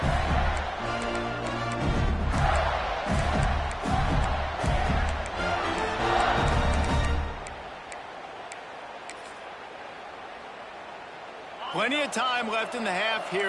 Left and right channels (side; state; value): both; identical; correlation 1.00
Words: Plenty of time left in the half